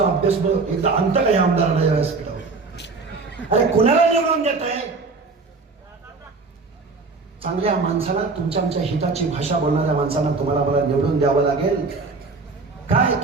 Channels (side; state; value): left; quieter; 4.1 dB